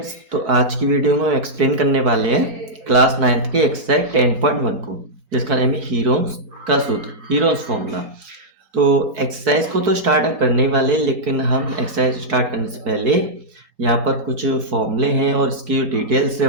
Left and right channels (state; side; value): late; left; 4.3 ms